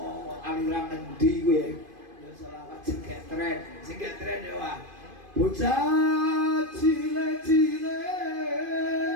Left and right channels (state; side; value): late; left; 2.5 ms